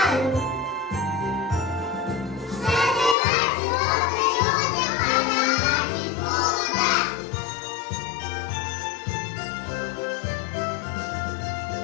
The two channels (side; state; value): right; drops out; at 3.2 s